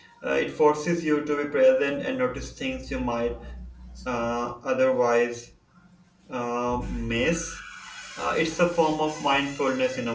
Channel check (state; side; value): identical; both; correlation 1.00